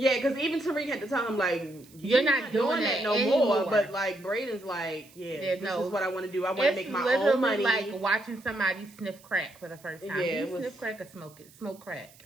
even Tariq had to tell him like, you're not doing that no more. But like Brayden's like, this is what I want to do. I want to make my own money. Like watching somebody sniff crack for the first time. Yeah, sniff crack or smoke crack.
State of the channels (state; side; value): noise; right; hiss, 25 dB below the sound